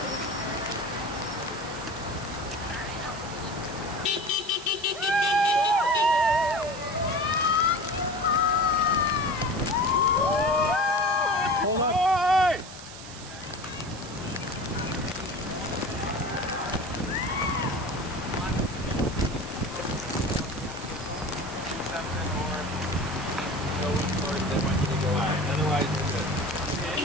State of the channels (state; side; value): noise; right; hiss, 14 dB below the sound